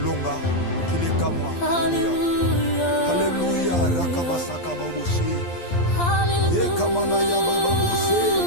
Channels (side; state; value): right; late; 12 ms